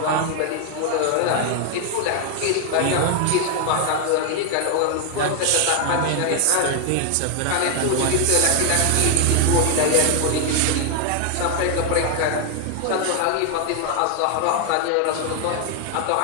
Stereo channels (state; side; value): different; both; correlation 0.01